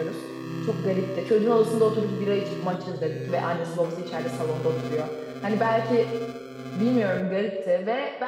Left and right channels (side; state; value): both; identical; correlation 1.00